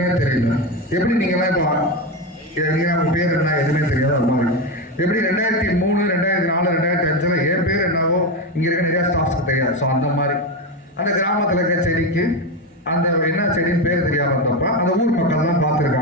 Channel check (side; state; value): both; normal; correlation 0.14